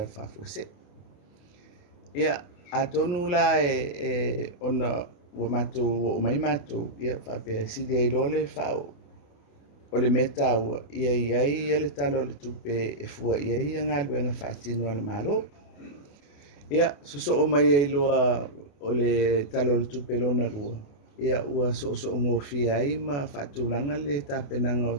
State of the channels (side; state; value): right; late; 28 ms